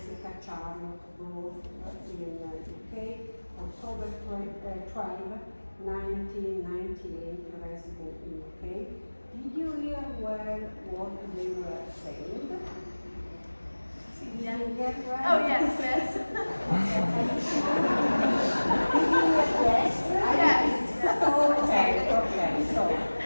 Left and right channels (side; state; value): both; inverted; correlation -1.00